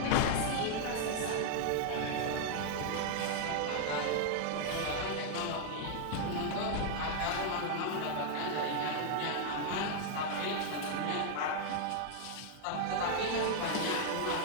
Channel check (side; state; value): both; different; correlation 0.00